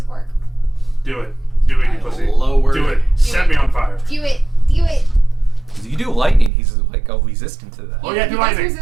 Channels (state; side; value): drops out; left; at 6.5 s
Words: Do it. Do it, you I pussy. lowered Do it. Set me on fire. Do it. Do it. You do lightning, he's like resistant to that. Oh yeah, He do does lightning.